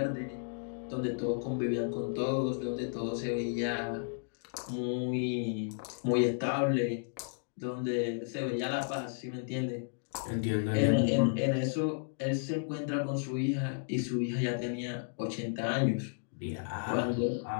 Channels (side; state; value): right; silent; digital silence